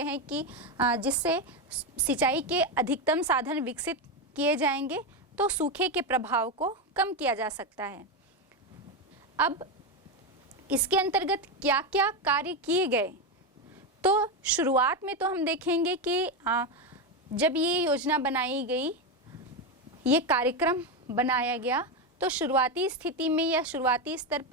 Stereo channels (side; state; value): both; normal; correlation 0.11